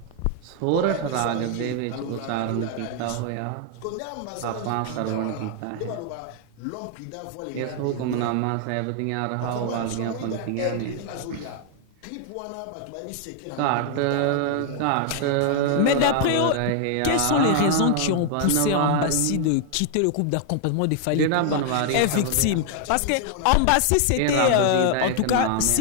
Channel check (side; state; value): both; different; correlation 0.00